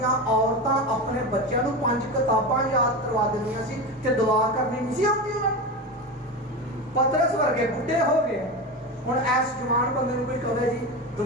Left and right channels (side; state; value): both; normal; correlation 0.22